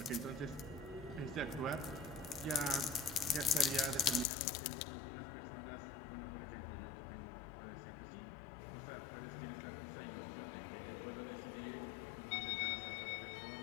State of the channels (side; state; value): right; drops out; at 4.2 s